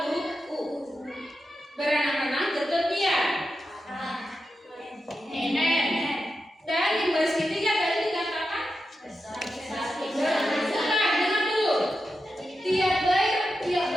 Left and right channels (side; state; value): both; normal; correlation 0.89